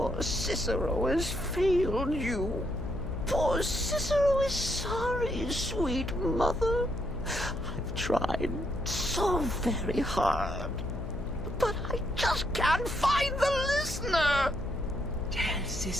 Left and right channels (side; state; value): left; noise; hum, 7 dB below the sound